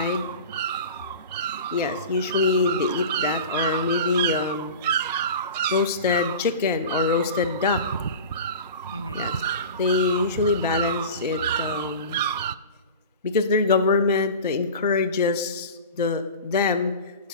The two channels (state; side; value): inverted; both; correlation -0.33